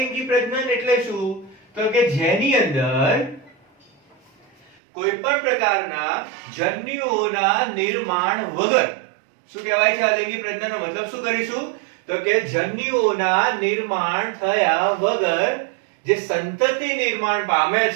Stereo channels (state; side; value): drops out; left; at 4.8 s